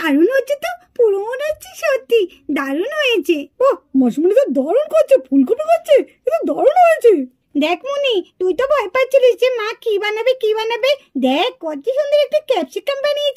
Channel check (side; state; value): both; identical; correlation 1.00